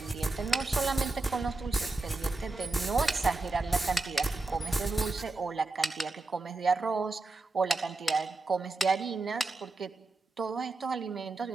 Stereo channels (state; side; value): quieter; left; 3.3 dB